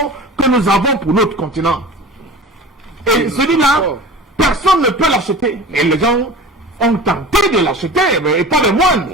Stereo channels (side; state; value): both; normal; correlation 0.37